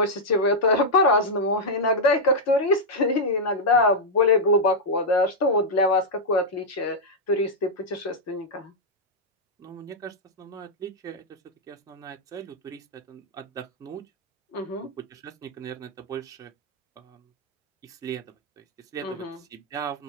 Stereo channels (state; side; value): normal; both; correlation -0.05